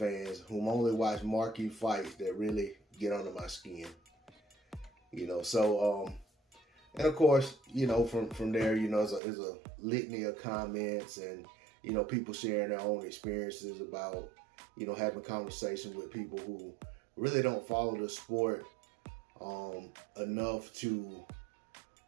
whom only watch marquee fights that really get under my skin. And of course, from there, is a litany of comments and people sharing their own experiences about, having conversations with people who really don't follow the sport enough to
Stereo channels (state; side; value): drops out; left; at 9.2 s